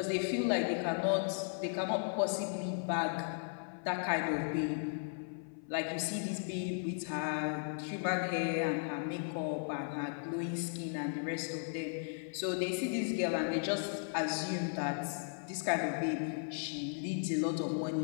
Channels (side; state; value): right; silent; 54 dB below the other